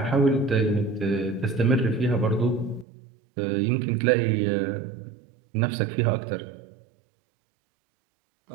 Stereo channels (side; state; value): left; drops out; at 2.9 s